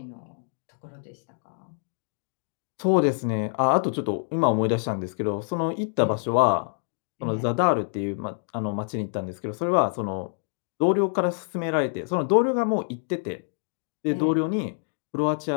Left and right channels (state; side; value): silent; right; 60 dB below the other